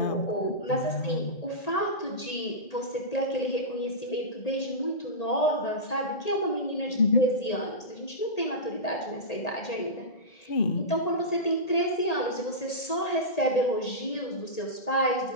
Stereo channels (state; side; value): late; right; 1.8 ms